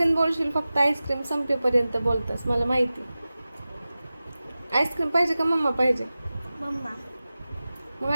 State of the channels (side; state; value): both; inverted; correlation -0.96